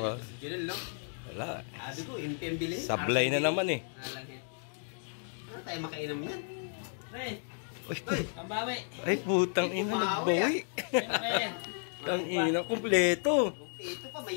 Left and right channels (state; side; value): silent; right; 56 dB below the other